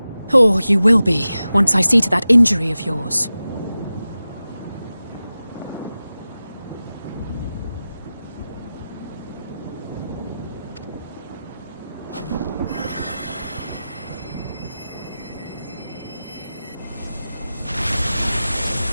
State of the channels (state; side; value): inverted; both; correlation -0.94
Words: Or you will be, once I see to that injury of yours.